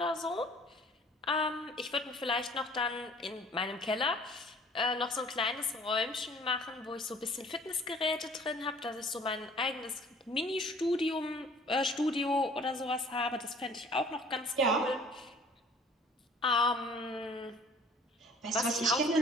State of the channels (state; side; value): normal; both; correlation 0.52